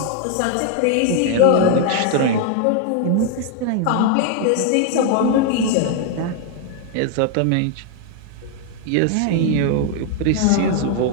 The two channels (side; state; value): both; different; correlation 0.00